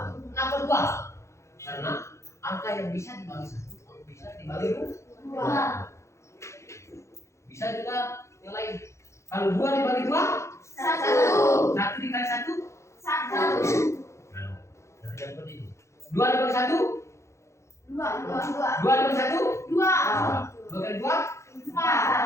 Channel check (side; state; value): right; late; 0.14 ms